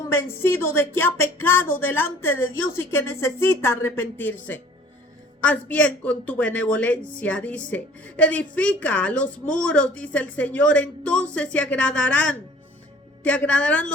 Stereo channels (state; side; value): normal; both; correlation 0.51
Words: de que ha pecado delante de Dios y que necesita arrepentirse. Haz bien con tu benevolencia, dice. Edifica los muros, dice el Señor, entonces te agradarán